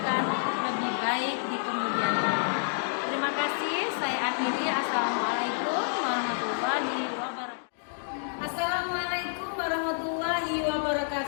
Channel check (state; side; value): silent; right; digital silence